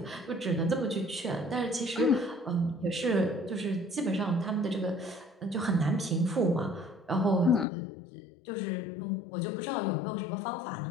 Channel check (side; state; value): right; drops out; at 7.7 s